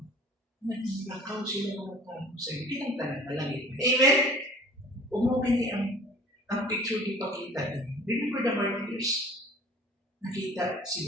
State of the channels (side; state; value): both; normal; correlation 0.48